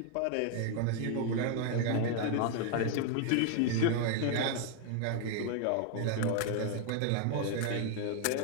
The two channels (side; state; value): both; different; correlation 0.00